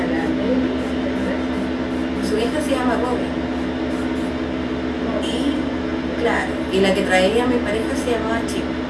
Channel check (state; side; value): identical; both; correlation 1.00